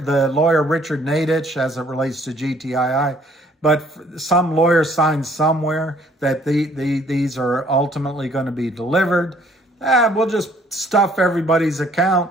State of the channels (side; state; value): both; normal; correlation 0.61